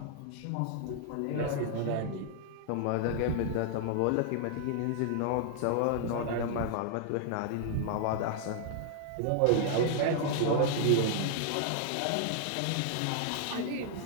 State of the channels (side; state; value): both; different; correlation 0.00